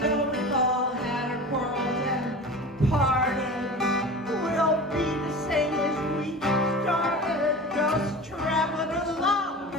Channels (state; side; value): normal; both; correlation 0.34